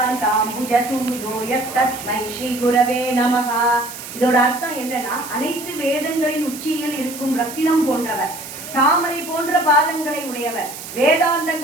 यस्तस्मै श्री गुरवे நமः. இதோட அர்த்தம் என்னன்னா, அனைத்து வேதங்களின் உச்சியில் இருக்கும் ரத்தினம் போன்றவர், தாமரை போன்ற பாதங்களை உடையவர்,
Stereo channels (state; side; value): noise; right; hiss, 12 dB below the sound